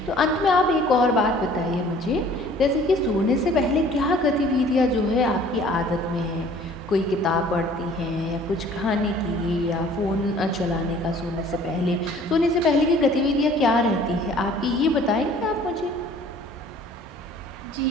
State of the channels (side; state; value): both; normal; correlation 0.52